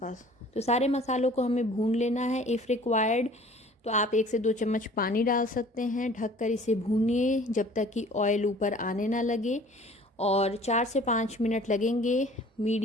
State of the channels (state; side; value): normal; both; correlation 0.49